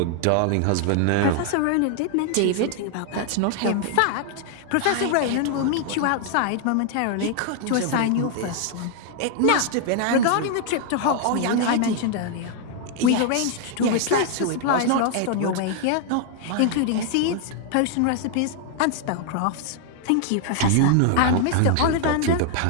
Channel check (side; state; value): both; different; correlation 0.00